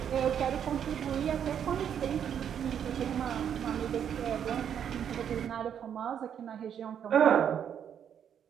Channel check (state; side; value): quieter; left; 8.7 dB